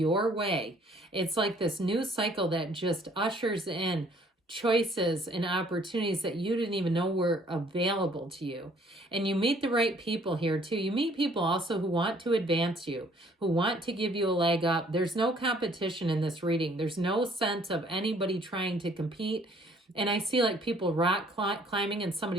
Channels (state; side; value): normal; both; correlation 0.60